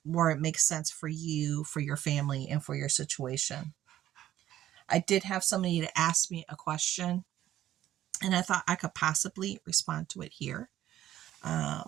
where it makes sense for you, for your family, and for your situation. I did have somebody to ask me a question, and I thought I could possibly respond to it here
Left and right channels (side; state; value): left; quieter; 12.7 dB